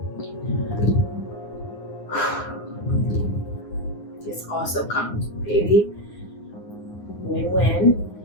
This also comes, baby. Win-win.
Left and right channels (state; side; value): late; right; 9.7 ms